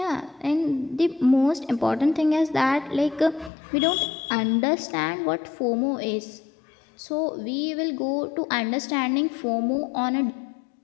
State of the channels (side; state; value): right; drops out; at 3.5 s